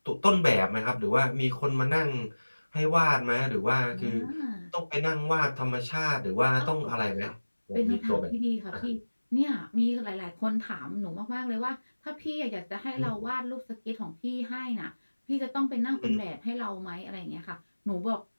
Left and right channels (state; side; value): inverted; both; correlation -1.00